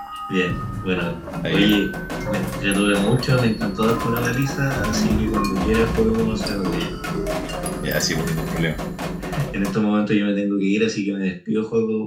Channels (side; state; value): both; identical; correlation 1.00